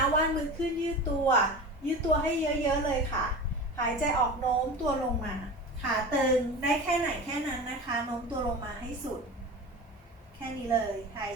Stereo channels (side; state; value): both; normal; correlation 0.32